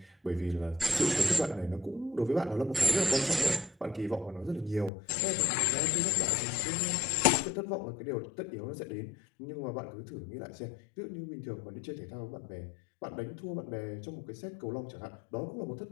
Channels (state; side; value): drops out; right; at 4.9 s